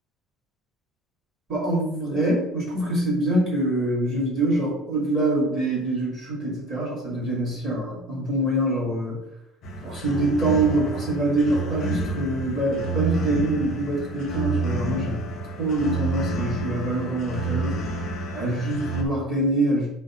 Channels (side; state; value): both; normal; correlation 0.41